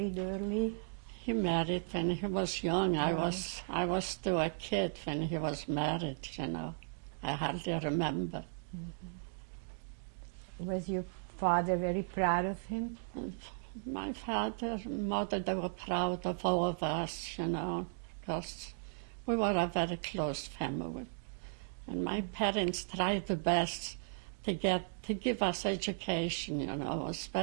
early? He married when he was young. I was still a kid when he was married, you know. I hardly remember. Was your father very proud of him? My father and mother, they were proud of all of us, you know, because we were a very close family. And my parents tried the best to give us education, you know. It was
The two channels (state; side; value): silent; left; digital silence